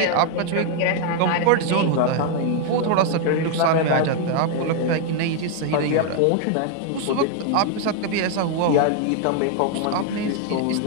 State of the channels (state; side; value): different; both; correlation 0.00